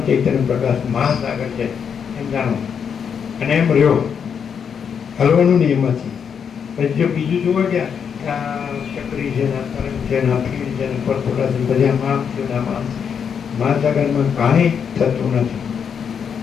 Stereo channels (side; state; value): right; quieter; 7.2 dB